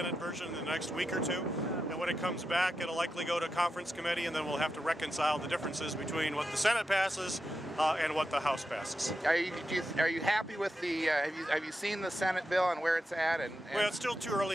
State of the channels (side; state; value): both; normal; correlation 0.88